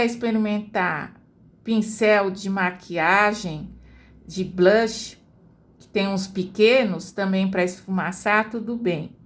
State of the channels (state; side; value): identical; both; correlation 1.00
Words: experimentar pincel de maquiagem, de blush, que tem uns pequenos também para esfumaçar, tudo bem.